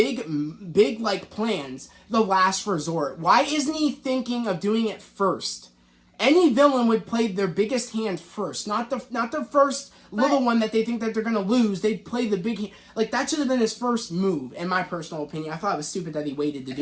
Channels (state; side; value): identical; both; correlation 1.00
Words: like plans the last resort. Why isn't he thinking of doing it first? Any villain would play their biggest hand first, not the first little one that they think that they're gonna lose. They'd play the big hand. Like that should have been his first move, in my personal opinion. I thought it was stupid that he waited to